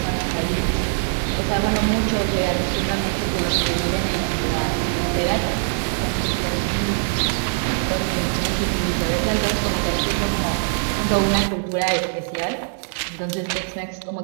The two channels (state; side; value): silent; left; digital silence